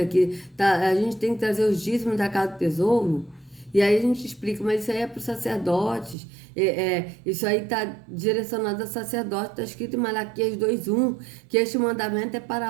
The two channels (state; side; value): drops out; left; at 6.2 s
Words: que a gente tem que trazer os dízimos da casa do tesouro. E aí a gente explica, mas isso aí é para os sacerdotes, isso aí está direcionado a sacerdote, está escrito em Malaquias 2:1, que este mandamento é